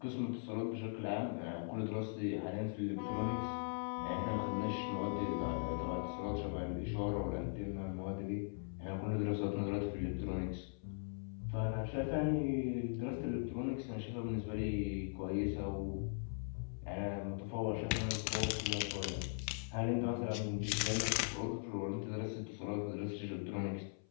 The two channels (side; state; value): right; silent; 51 dB below the other